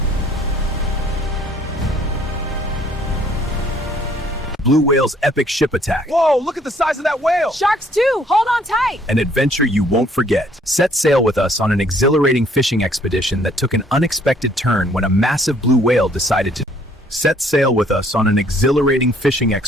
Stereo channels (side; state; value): both; normal; correlation 0.62